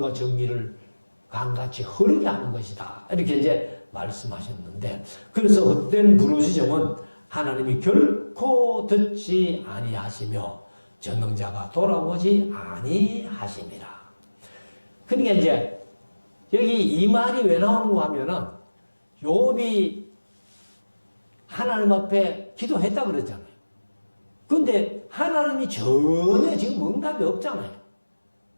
정의를 강같이 흐르게 하는 것이다. 이렇게 이제 말씀하셨는데, 그래서 헛된 부르짖음은 하나님이 결코 듣지 아니하시며 전능자가 돌아오지 아니하심이라. 그러니까 이제 여기 이 말이 왜 나오는가 하면은 욥이 하나님 앞에 기도했다 그랬잖아요. 근데 하나님이 전혀 지금 응답이 없잖아요.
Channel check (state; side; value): inverted; both; correlation -1.00